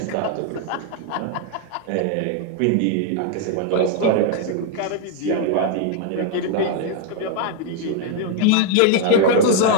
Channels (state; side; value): different; both; correlation 0.00